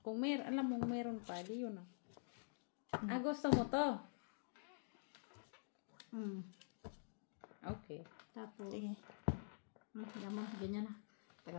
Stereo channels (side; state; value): right; silent; digital silence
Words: kung alam mong meron pa, di yun ah. Gusto mo to? Okay. Tapos, Sige. yaman, ganyan na.